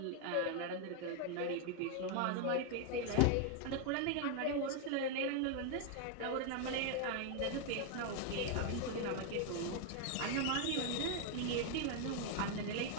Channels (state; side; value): different; both; correlation 0.01